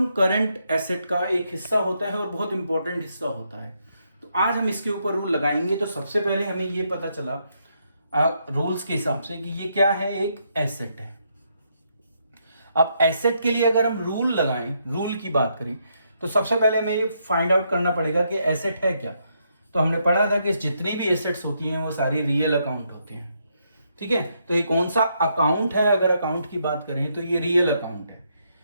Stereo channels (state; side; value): inverted; both; correlation -0.77